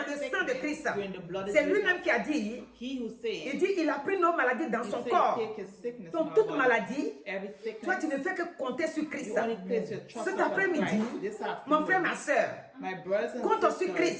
every le sang de sickness, Christ. you're in the blood of C'est Jesus. lui-même qui a dit, He who il said, dit, il a pris nos maladies dans he son said, corps. take his sickness in Donc our toute body. maladie, Every toi tu sickness, ne fais que compter sur Christ. you only place your trust Cet upon après-midi, Christ. This afternoon, mon frère, ma soeur, my brothers and compte sur sisters,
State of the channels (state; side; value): identical; both; correlation 1.00